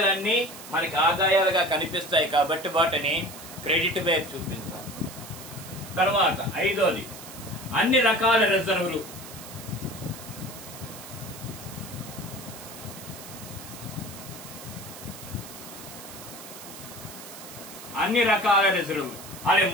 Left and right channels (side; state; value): right; noise; hiss, 14 dB below the sound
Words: మనకి ఆదాయాలుగా కనిపిస్తాయి కాబట్టి వాటిని క్రెడిట్ వైపు చూపించాలి. తర్వాత ఐదోది అన్ని రకాల రిజర్వులు. అన్ని రకాల రిజర్వులు